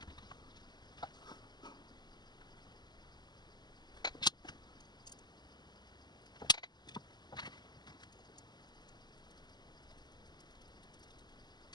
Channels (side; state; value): right; late; 0.21 ms